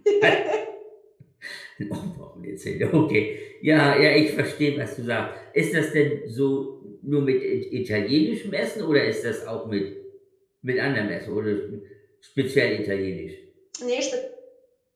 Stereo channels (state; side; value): identical; both; correlation 1.00